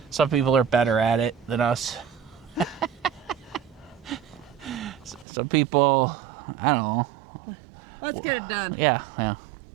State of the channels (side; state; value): left; drops out; at 5.2 s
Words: some people are better at it than us. Some people, I don't know. Let's get it done. Yeah.